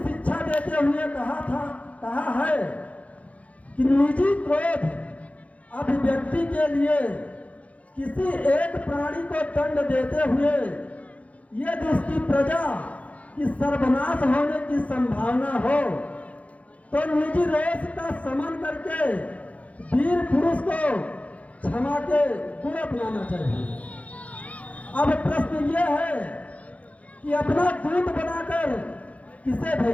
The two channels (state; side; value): late; right; 0.066 ms